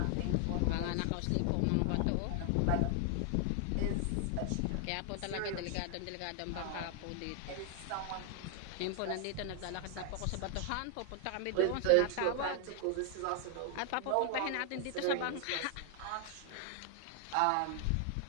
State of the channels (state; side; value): different; both; correlation 0.00